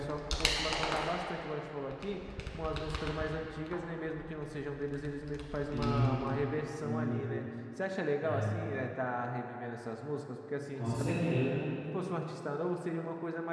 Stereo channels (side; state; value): both; identical; correlation 1.00